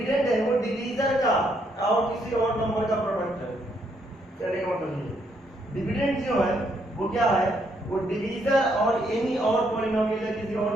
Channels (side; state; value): both; normal; correlation 0.73